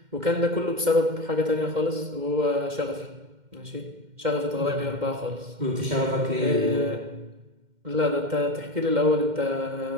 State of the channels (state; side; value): late; left; 2.1 ms